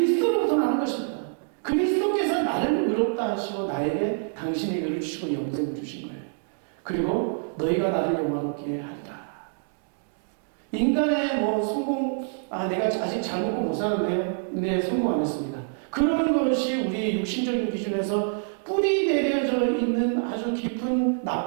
나는 것입니다. 그리스도께서 나를 의롭다 하시고 나에게 당신의 의를 주시고 영생을 주신 거예요. 그리고 너희가 나를 영화롭게 하리라. 인간의 성공, 내가 아직 잘 먹고 못 사는데요. 네, 성공 안 했습니다. 그러는 것이 우리 육신적인 기준에서 뿌리 내려져 있는 아주 깊은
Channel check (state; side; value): silent; left; digital silence